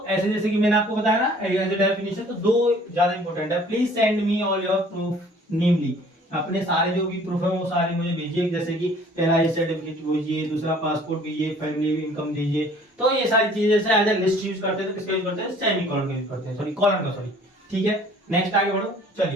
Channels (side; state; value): both; normal; correlation 0.53